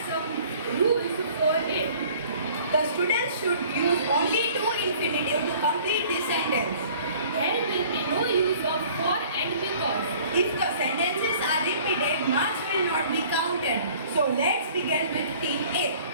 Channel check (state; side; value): inverted; both; correlation -0.52